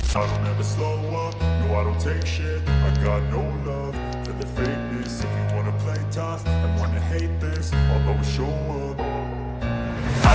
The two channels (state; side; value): identical; both; correlation 1.00